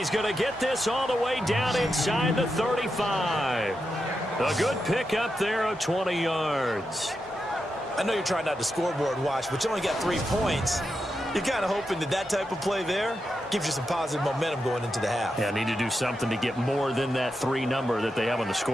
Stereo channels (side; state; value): both; normal; correlation 0.87